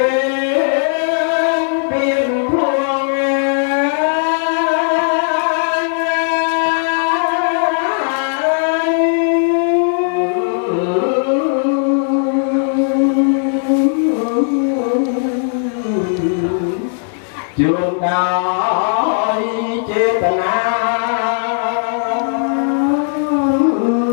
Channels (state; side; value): silent; right; 69 dB below the other